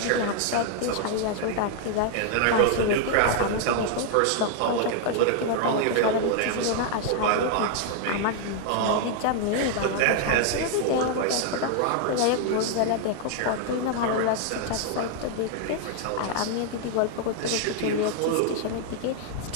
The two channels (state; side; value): different; both; correlation 0.00